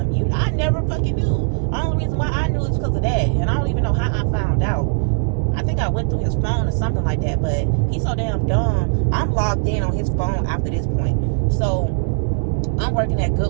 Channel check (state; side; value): silent; left; digital silence